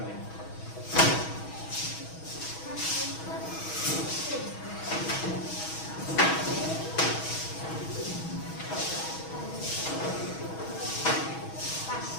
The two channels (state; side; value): late; right; 6.2 ms